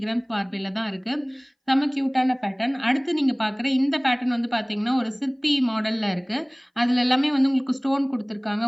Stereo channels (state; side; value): identical; both; correlation 1.00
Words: கிராம்ஸ் பார்வையில தான் இருக்கு. செம்ம கியூட்டான பேட்டர்ன். அடுத்து நீங்க பார்க்குற இந்த பேட்டர்ன் வந்து பார்த்தீங்கன்னா ஒரு சிற்பி மாடல்ல இருக்கு. அதுல எல்லாமே வந்து உங்களுக்கு ஸ்டோன் குடுத்துருக்காங்க.